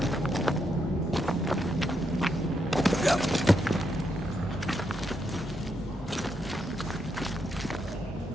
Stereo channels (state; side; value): normal; both; correlation 0.80